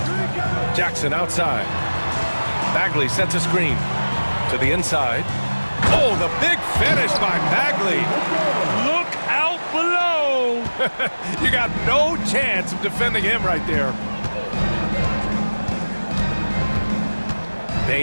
Jackson outside. Bagley sets a screen to the inside. Oh, the big finish by Bagley. Look out below. You got no chance of defending him right there.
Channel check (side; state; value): both; inverted; correlation -1.00